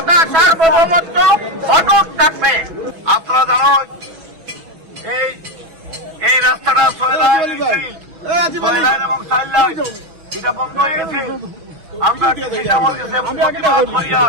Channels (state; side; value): late; left; 6.1 ms